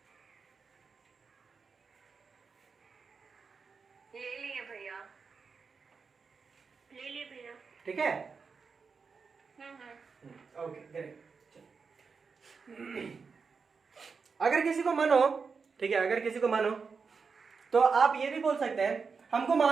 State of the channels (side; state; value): left; quieter; 5.2 dB